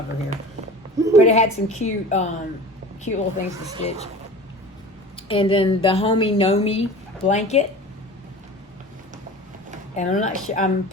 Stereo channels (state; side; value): normal; both; correlation 0.38